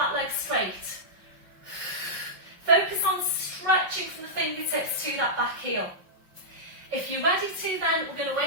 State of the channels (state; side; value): late; left; 5.5 ms